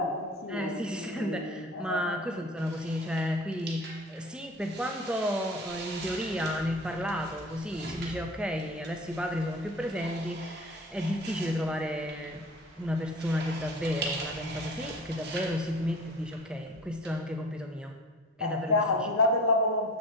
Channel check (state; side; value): normal; both; correlation 0.40